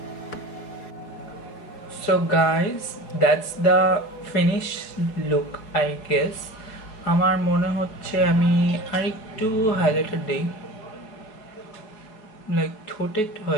So guys, that's the finished look, I guess. আমার মনে হচ্ছে আমি আরেকটু হাইলাইটার দেই, লাইক ঠোঁটে একটু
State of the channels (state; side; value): late; right; 4.6 ms